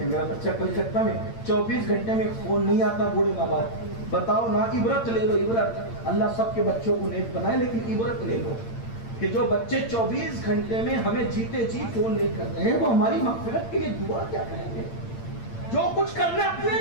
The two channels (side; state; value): right; late; 8.8 ms